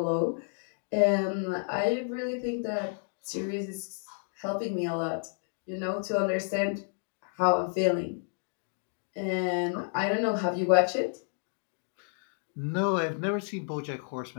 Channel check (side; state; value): right; silent; 57 dB below the other